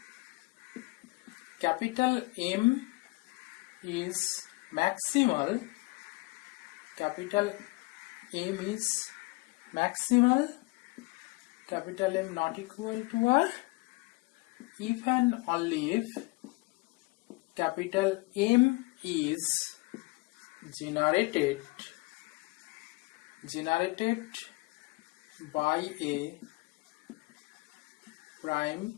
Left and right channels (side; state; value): right; quieter; 24.7 dB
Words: capital M is maximal. Capital M is maximal. Capital M not equal to R if and only if capital M is generated by a